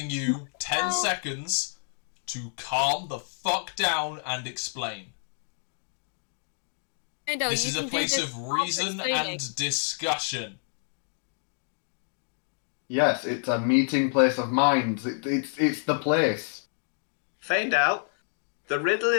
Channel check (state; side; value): silent; right; digital silence